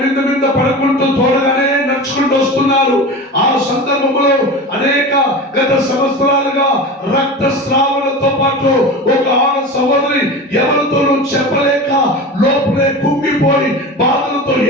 మీద పడుకుంటూ తోడగానే నడుచుకుంటూ వస్తున్నారు. ఆ సందర్భంలో అనేక గత సంవత్సరాలుగా రక్తస్రావణతో పాటు ఒక ఆడ సహోదరి ఎవరితోనూ చెప్పలేక లోపలే కుంగిపోయి బాధలతో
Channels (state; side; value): normal; both; correlation 0.30